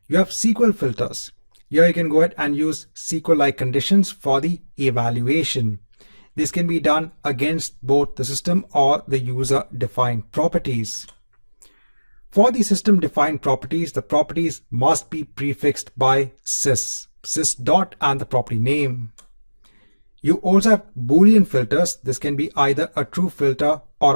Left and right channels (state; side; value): inverted; both; correlation -1.00